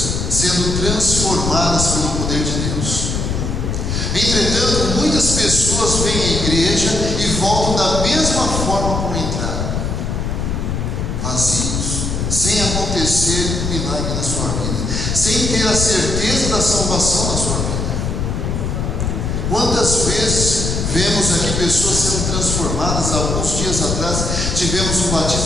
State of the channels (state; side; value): noise; left; rumble, 1 dB below the sound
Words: sendo transformadas pelo poder de Deus. Entretanto, muitas pessoas vêm à igreja e voltam da mesma forma como entraram, vazios, sem acontecer um milagre na sua vida, sem ter a certeza da salvação na sua vida. Quantas vezes vemos aqui pessoas sendo transformadas? Alguns dias atrás tivemos um